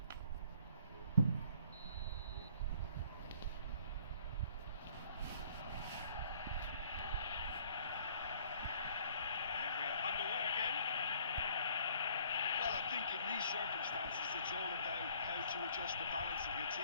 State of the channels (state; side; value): inverted; both; correlation -0.58